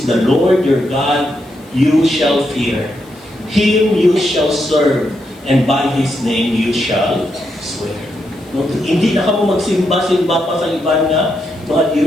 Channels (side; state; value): left; noise; hiss, 28 dB below the sound